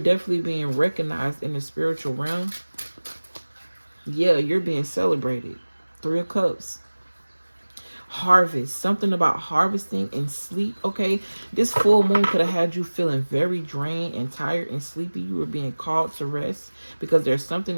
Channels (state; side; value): inverted; both; correlation -1.00